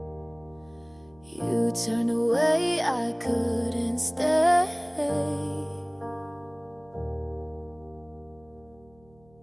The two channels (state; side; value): noise; right; hum, 30 dB below the sound